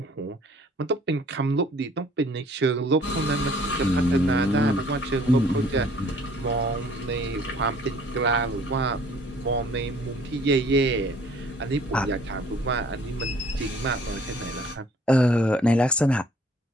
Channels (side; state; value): both; normal; correlation 0.56